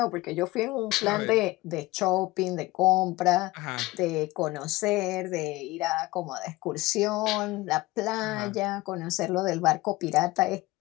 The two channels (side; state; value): right; quieter; 20.0 dB